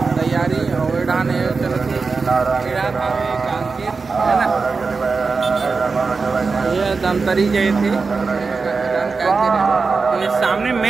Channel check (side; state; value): left; quieter; 4.5 dB